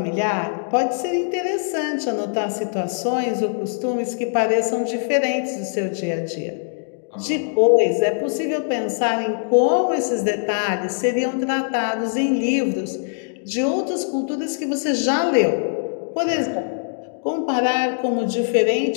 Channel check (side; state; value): right; silent; digital silence